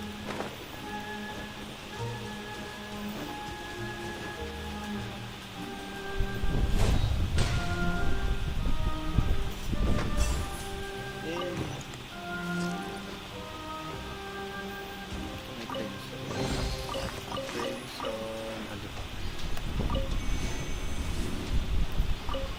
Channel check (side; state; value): both; identical; correlation 1.00